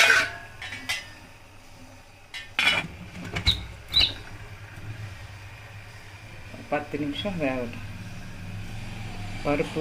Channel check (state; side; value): identical; both; correlation 1.00